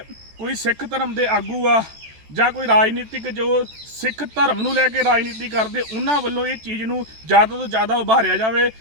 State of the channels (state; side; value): late; left; 14 ms